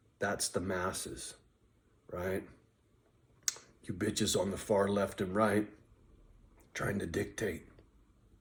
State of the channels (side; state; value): both; identical; correlation 1.00